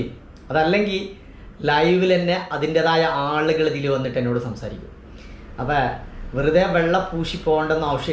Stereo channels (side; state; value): both; identical; correlation 1.00